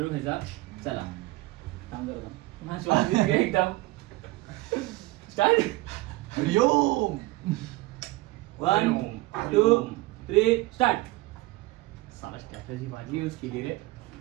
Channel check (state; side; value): quieter; left; 20.0 dB